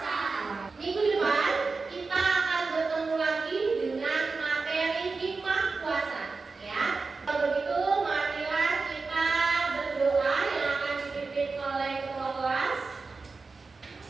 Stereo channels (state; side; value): quieter; left; 4.2 dB